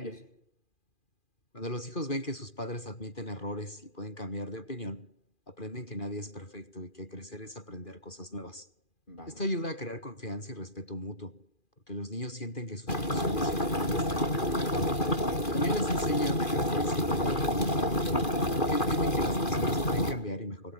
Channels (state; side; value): late; right; 2.4 ms